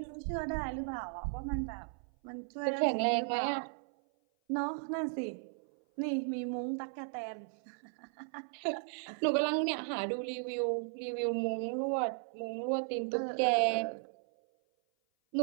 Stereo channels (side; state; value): left; silent; 54 dB below the other